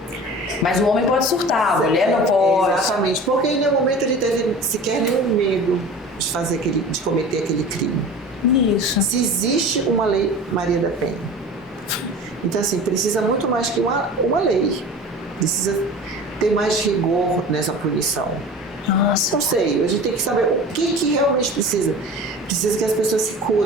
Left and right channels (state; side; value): normal; both; correlation 0.38